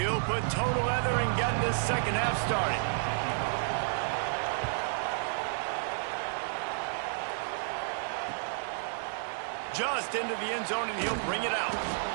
put total leather and get this second half started. Just into the end zone, and he'll bring it out.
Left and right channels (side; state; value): left; silent; digital silence